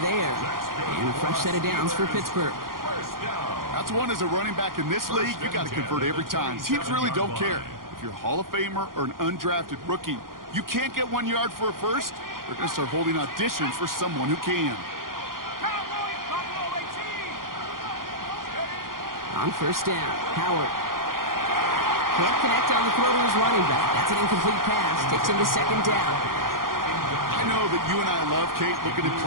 And a fresh set of downs for Pittsburgh. That's one as a running back in this league, you got to convert every time. Teams really don't care. If you're a Hall of Famer or an undrafted rookie, you can't get 1 yard for a first, they're going to start holding auditions for someone who can. On first down, Howard. Can't connect on the throw to his running back. That's an incomplete pass. Takes him to second down. I know that you and I love, Kate, looking at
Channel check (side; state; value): left; late; 0.91 ms